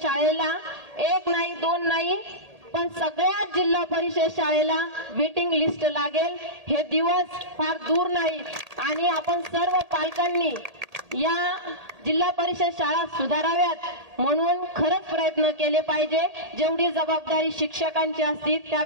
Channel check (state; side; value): late; left; 1.8 ms